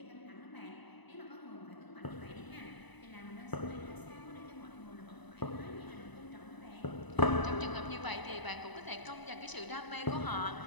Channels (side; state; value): right; late; 1.0 ms